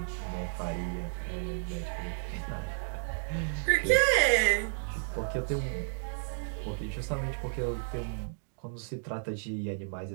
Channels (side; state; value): left; silent; digital silence